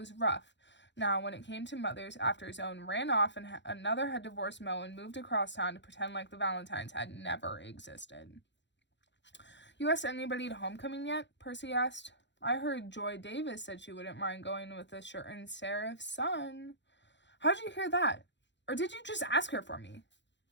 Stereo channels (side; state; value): right; late; 0.52 ms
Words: rough. Now, when it came to mothers, after his own ran off and another had divorced Mo and moved across town to pretend like the Valentines had never existed. You asked anybody to homecoming yet? Percy asked. I heard Joy Davis said she wouldn't mind going with a certain Seraph's son. How'd you hear that? Or did you just ask her for me?